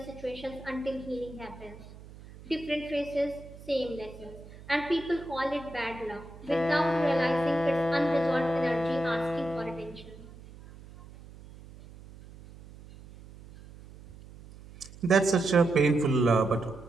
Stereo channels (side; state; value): right; noise; hum, 18 dB below the sound